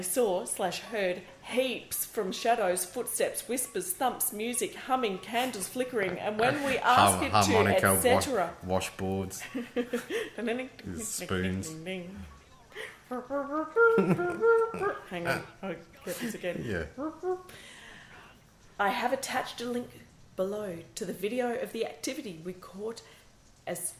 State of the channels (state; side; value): identical; both; correlation 1.00